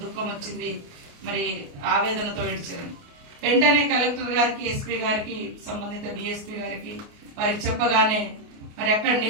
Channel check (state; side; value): late; left; 28 ms